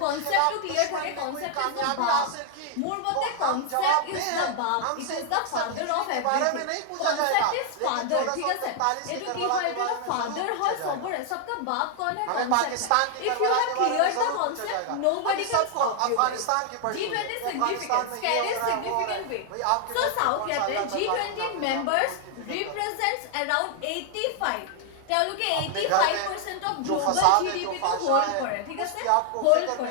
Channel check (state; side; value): different; both; correlation 0.00